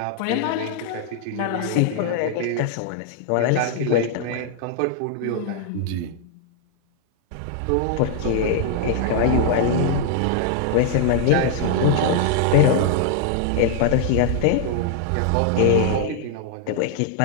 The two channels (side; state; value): both; different; correlation -0.01